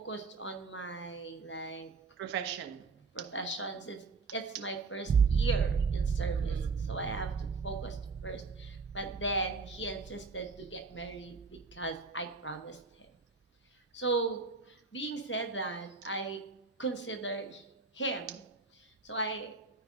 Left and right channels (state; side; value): quieter; left; 4.3 dB